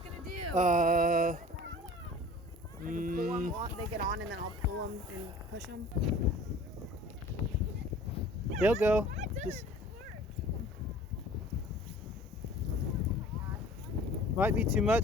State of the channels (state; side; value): normal; both; correlation 0.46